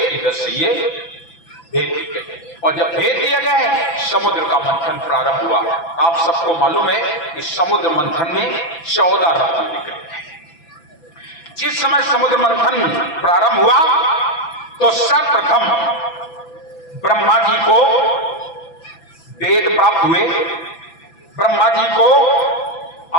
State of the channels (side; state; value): right; late; 6.0 ms